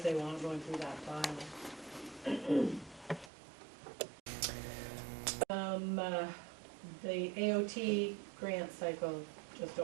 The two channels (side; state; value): left; drops out; at 3.3 s